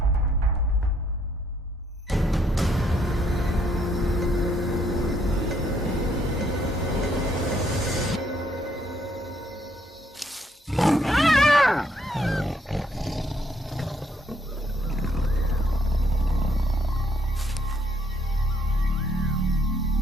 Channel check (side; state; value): both; normal; correlation 0.70